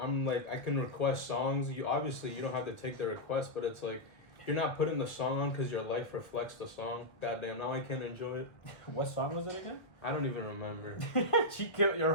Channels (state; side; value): late; right; 1.4 ms